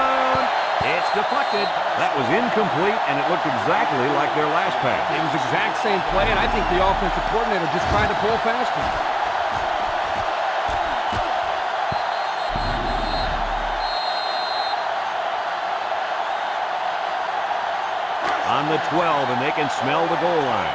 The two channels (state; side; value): identical; both; correlation 1.00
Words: It's deflected. That was incomplete, and it looked exactly like their last pass. It was the exact same play, and I think the offensive coordinator just tried to pull past him. On the 12, and they can smell the goal line.